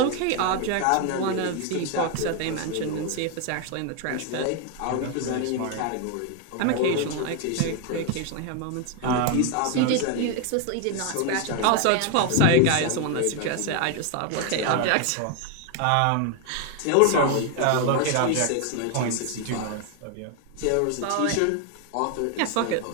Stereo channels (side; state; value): both; different; correlation 0.01